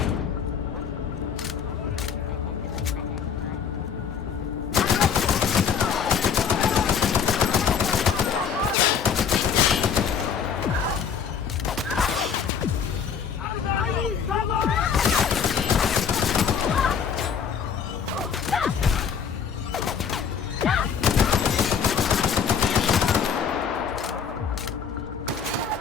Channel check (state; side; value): quieter; right; 6.9 dB